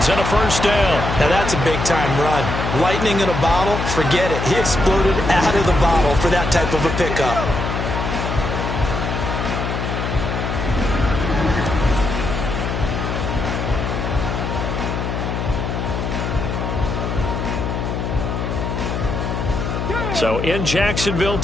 and a first down. Now that's a big-time run. Lightning in a bottle, forget it. He exploded out of the bottle for that type of a pickup. So in Jacksonville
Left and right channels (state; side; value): noise; left; hum, 2 dB below the sound